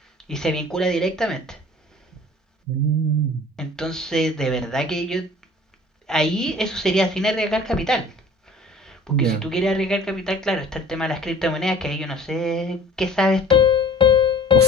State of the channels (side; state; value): both; normal; correlation 0.47